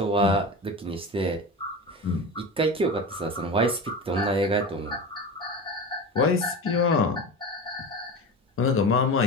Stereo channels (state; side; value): normal; both; correlation 0.28